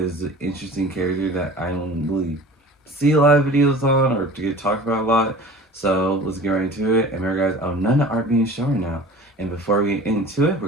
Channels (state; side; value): normal; both; correlation 0.42